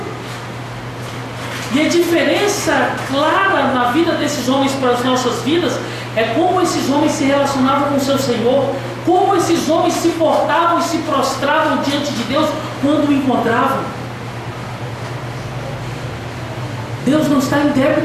E a diferença clara na vida desses homens para as nossas vidas é como esses homens se relacionavam com o seu Senhor, como esses homens se portavam e se prostravam diante de Deus quando o encontravam. Deus não está em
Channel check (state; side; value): identical; both; correlation 1.00